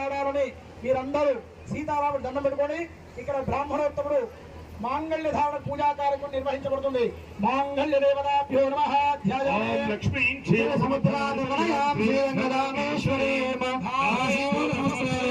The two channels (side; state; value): both; identical; correlation 1.00